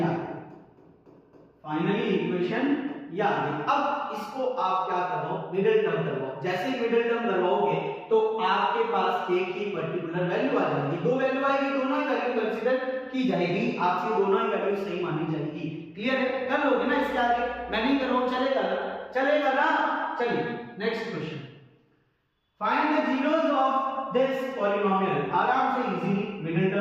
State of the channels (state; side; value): identical; both; correlation 1.00